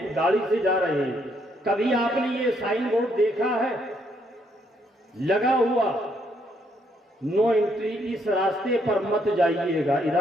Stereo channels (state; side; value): normal; both; correlation 0.72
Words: گاڑی سے جا رہے ہیں، کبھی آپ نے یہ سائن بورڈ دیکھا ہے لگا ہوا، نو انٹری، اس راستے پر مت جائیے گا،